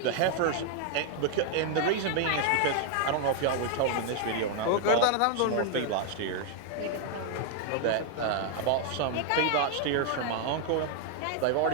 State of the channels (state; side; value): different; both; correlation 0.00